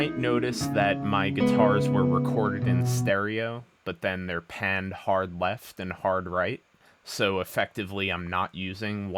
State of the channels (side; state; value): both; identical; correlation 1.00